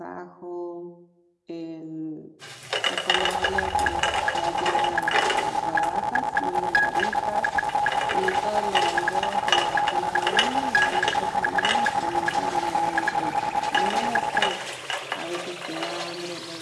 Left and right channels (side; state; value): both; identical; correlation 1.00